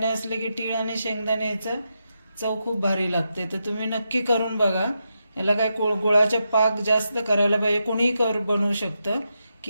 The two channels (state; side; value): inverted; both; correlation -0.86